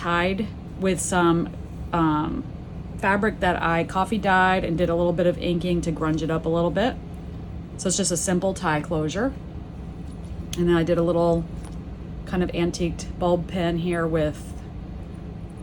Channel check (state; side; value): identical; both; correlation 1.00